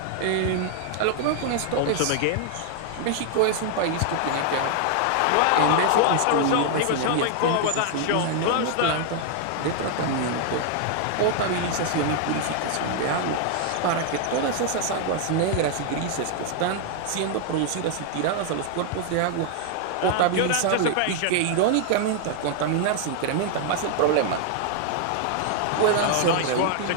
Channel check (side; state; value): both; different; correlation 0.00